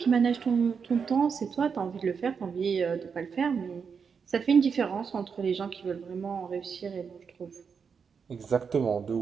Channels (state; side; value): quieter; left; 6.1 dB